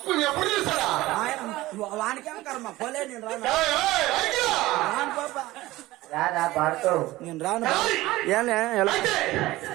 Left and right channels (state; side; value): quieter; left; 17.9 dB